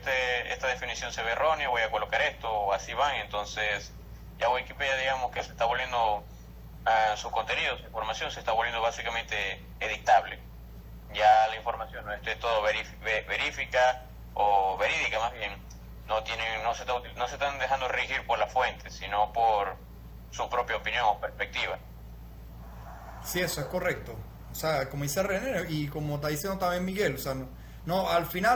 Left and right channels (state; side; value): identical; both; correlation 1.00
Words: definición se ve errónea, voy a colocar esto, o así van. Entonces ya Wikipedia, digamos que se está volviendo su contenido, su información se está volviendo básicamente editable. Ya la información no esté todo verifica o verídica, más bien no se están dejando regir por la fuente, sino por su propia opinión o perspectiva. sí, eso es correcto. O sea, como dice René y como está diciendo también Miguel, o sea, no al